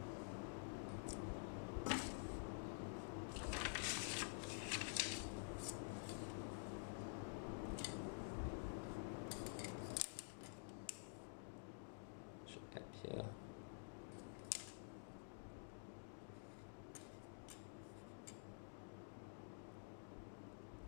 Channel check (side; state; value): right; silent; digital silence